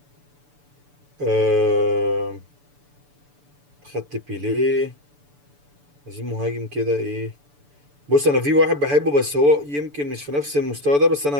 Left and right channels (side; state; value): left; late; 6.9 ms